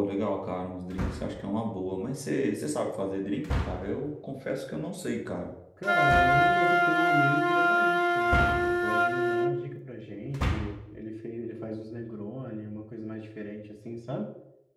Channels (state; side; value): identical; both; correlation 1.00